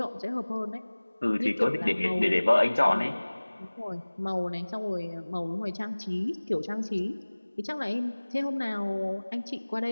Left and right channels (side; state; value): both; inverted; correlation -1.00